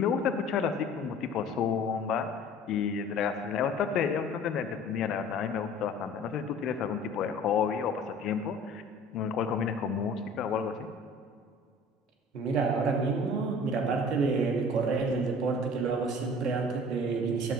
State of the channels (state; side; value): normal; both; correlation 0.46